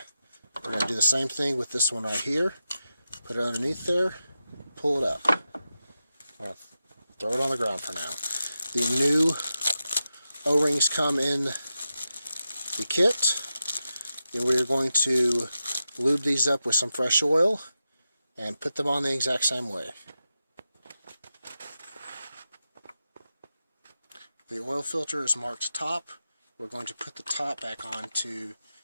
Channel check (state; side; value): inverted; both; correlation -0.90